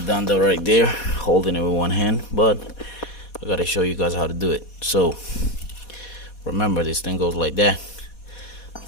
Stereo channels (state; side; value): late; right; 4.2 ms